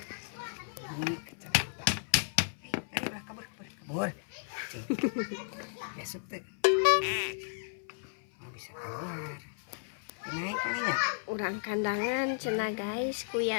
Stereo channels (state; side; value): silent; right; 55 dB below the other